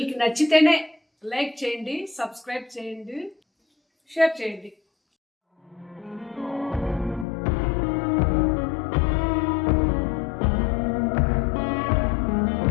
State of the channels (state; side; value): drops out; right; at 7.2 s